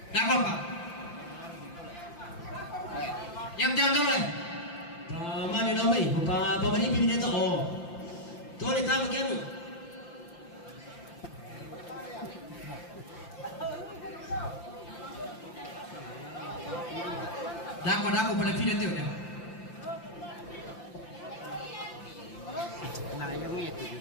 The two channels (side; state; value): right; late; 5.8 ms